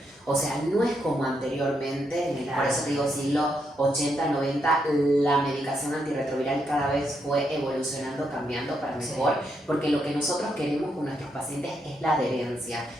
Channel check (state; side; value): normal; both; correlation 0.79